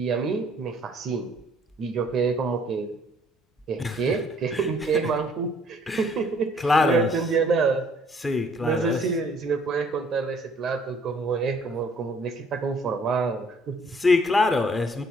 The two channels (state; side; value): normal; both; correlation 0.61